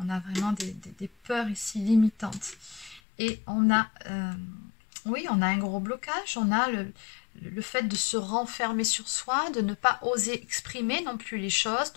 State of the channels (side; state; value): right; drops out; at 3.0 s